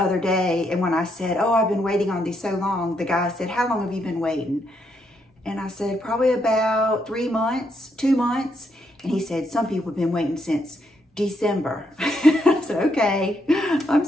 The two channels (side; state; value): both; normal; correlation 0.77